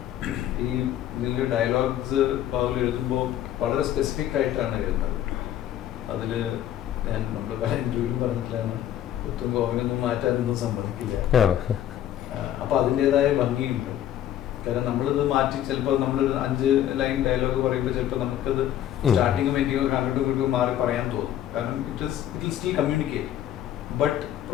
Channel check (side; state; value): right; quieter; 11.5 dB